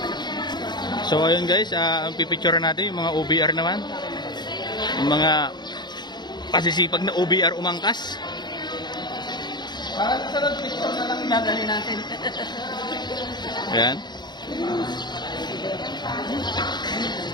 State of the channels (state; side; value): late; right; 0.21 ms